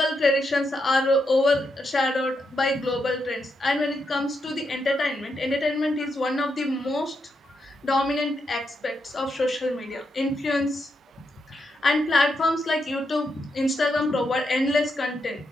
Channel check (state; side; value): normal; both; correlation 0.82